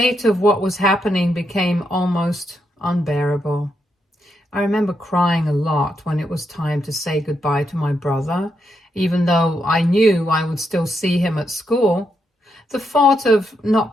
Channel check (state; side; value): normal; both; correlation 0.81